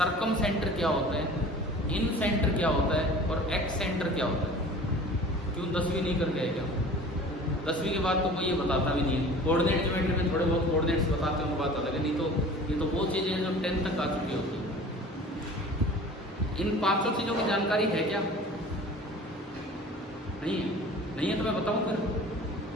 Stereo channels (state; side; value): normal; both; correlation 0.43